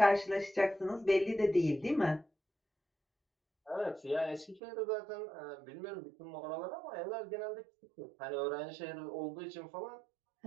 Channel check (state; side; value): drops out; left; at 4.6 s